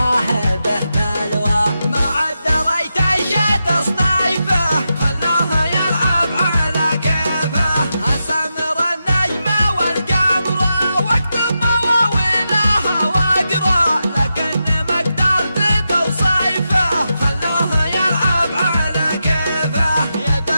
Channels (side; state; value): both; inverted; correlation -0.88